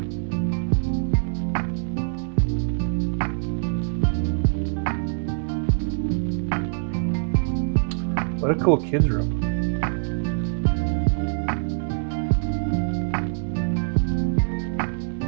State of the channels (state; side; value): silent; left; digital silence